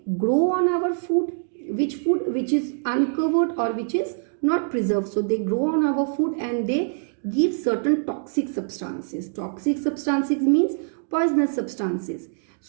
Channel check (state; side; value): silent; left; digital silence